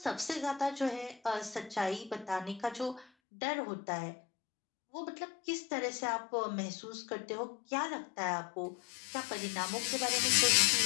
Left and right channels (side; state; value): right; drops out; at 3.1 s